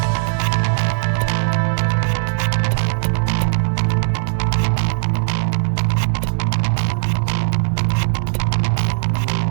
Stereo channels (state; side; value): silent; left; digital silence